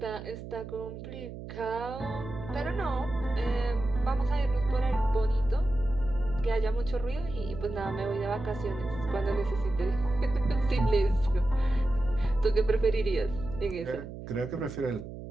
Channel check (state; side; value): noise; right; hum, 11 dB below the sound